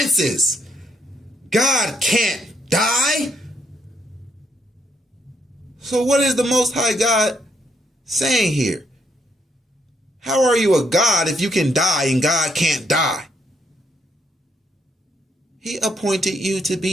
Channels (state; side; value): normal; both; correlation 0.74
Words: God can't die. So what is the Most High God saying here? How are you a God if you can die and God can't die? He appointed you to